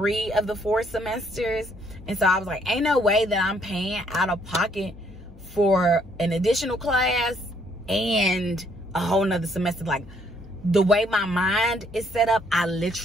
of the 4 semesters. And so I was like, ain't no way that I'm paying out of pocket for an additional class and a whole nother semester. Like, the way my mind is set up, I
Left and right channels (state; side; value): noise; left; hum, 20 dB below the sound